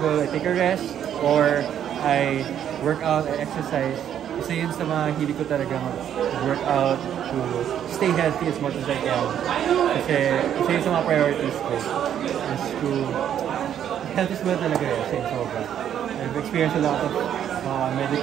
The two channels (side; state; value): left; quieter; 9.8 dB